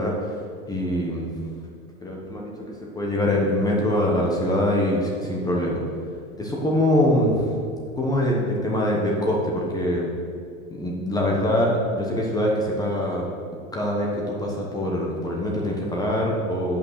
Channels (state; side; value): normal; both; correlation 0.43